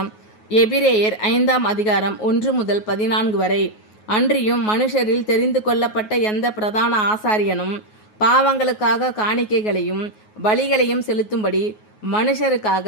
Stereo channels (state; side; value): late; right; 9.4 ms